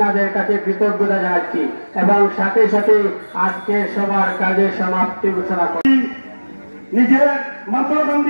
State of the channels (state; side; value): inverted; both; correlation -1.00